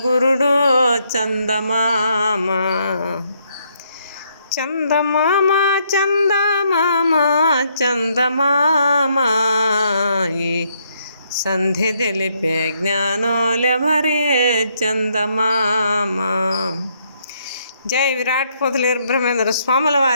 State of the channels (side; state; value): both; inverted; correlation -0.73